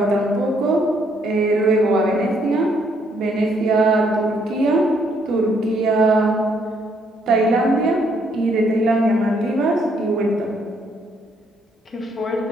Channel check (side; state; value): both; normal; correlation 0.70